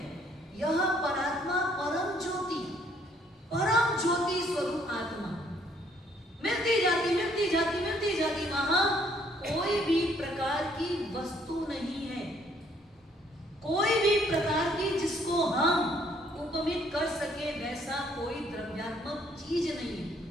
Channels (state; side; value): normal; both; correlation 0.65